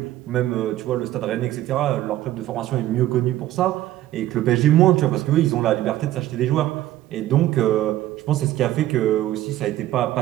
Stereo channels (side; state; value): left; quieter; 14.3 dB